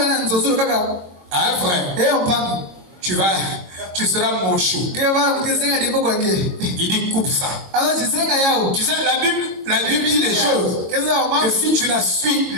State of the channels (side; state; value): left; late; 22 ms